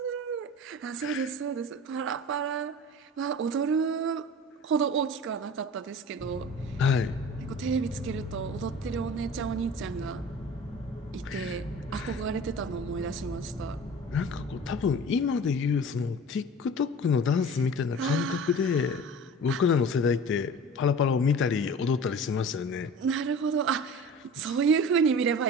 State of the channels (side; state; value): both; normal; correlation 0.39